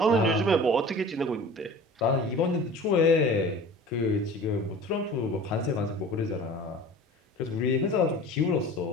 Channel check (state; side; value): normal; both; correlation 0.40